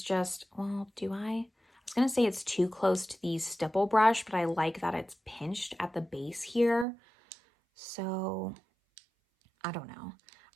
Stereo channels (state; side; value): drops out; left; at 6.9 s